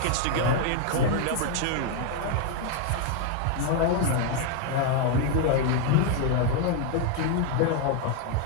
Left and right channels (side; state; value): both; different; correlation 0.01